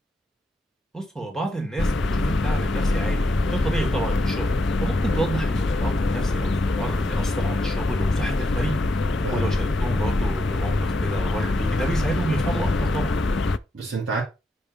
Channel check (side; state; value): both; normal; correlation 0.82